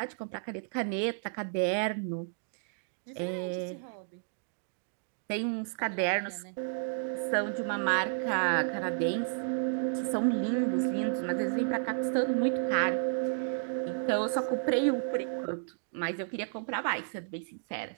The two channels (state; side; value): silent; left; digital silence